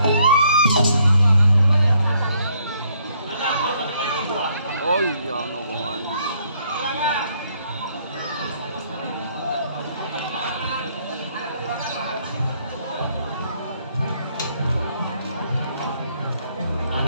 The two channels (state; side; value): inverted; both; correlation -0.69